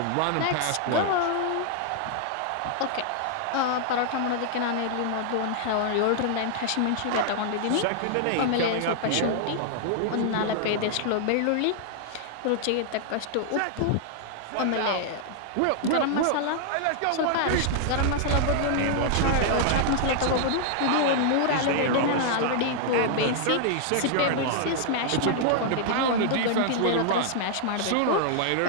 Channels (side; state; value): both; different; correlation 0.00